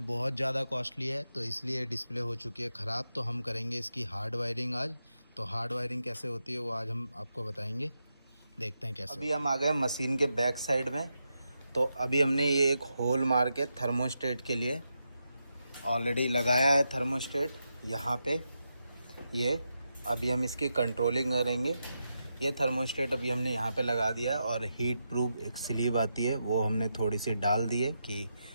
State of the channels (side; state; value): both; inverted; correlation -0.86